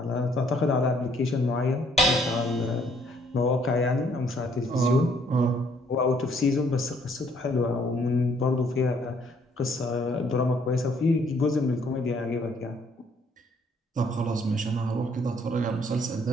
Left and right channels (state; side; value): normal; both; correlation 0.65